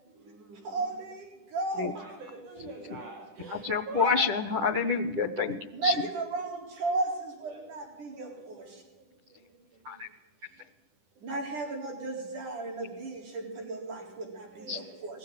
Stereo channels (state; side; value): late; left; 10 ms